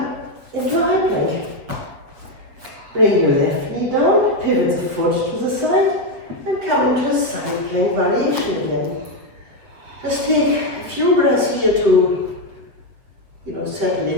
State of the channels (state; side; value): late; left; 7.6 ms